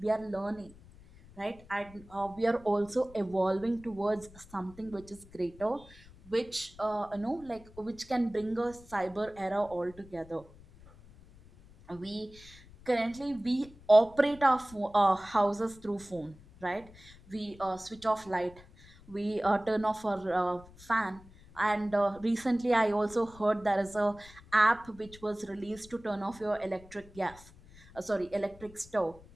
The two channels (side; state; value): left; noise; rumble, 22 dB below the sound